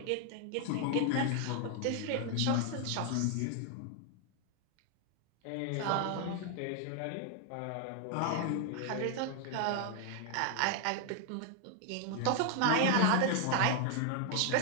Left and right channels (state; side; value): different; both; correlation 0.00